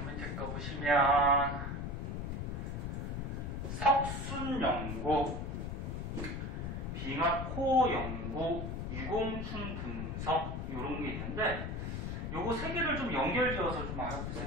밑에 거 보시면 석순 연구, 빙하코 연구, 유공충 분석 이런 게 있는데 요거 세 개를 좀 연결지어서 좀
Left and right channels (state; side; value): noise; left; rumble, 4 dB below the sound